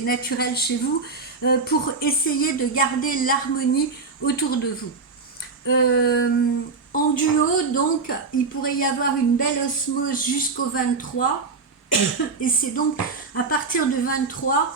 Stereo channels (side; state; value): left; quieter; 4.3 dB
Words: naturelle chez vous, pour essayer de garder l'harmonie autour de vous. En duo, donc, il pourrait y avoir une belle osmose jusqu'au 23, et c'est donc à partir du 23